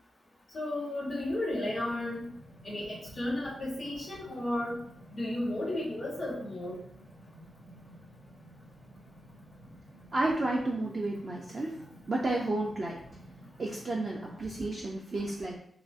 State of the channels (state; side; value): normal; both; correlation 0.90